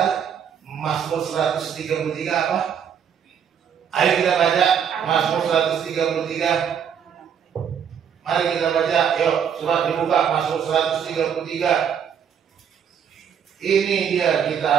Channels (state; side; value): quieter; left; 8.0 dB